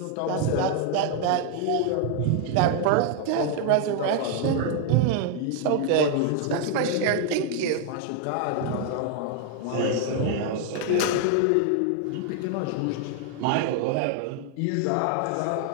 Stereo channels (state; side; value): different; both; correlation 0.00